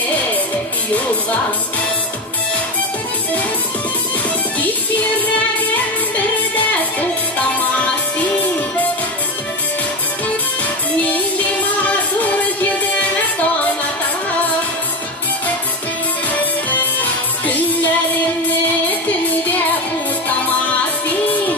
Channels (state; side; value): normal; both; correlation 0.17